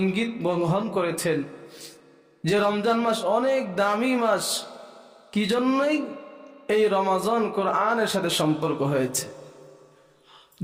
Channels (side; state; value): both; identical; correlation 1.00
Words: ইঙ্গিত বহন করেছেন যে রমজান মাস অনেক দামি মাস। কি জন্যই? এই রমজান কোরআনের সাথে সম্পর্ক হয়েছে।